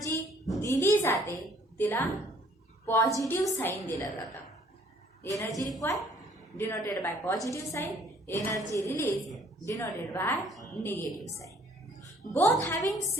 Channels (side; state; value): both; normal; correlation 0.60